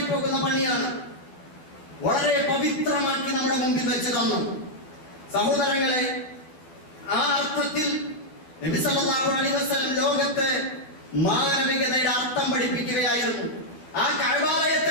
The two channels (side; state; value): right; late; 12 ms